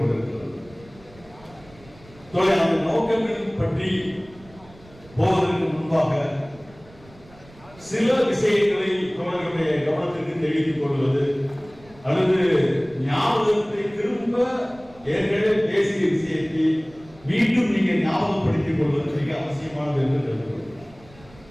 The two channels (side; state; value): right; noise; rumble, 24 dB below the sound